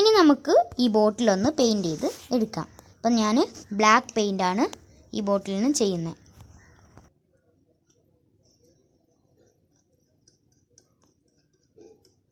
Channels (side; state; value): both; identical; correlation 1.00